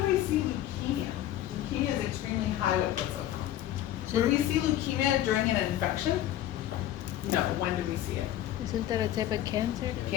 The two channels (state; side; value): quieter; right; 12.8 dB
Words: we see leukemia? Leukemia is extremely high white blood cell count. Would we see leukemia during an infection? No. When do we see it? Isn't that a type of cancer?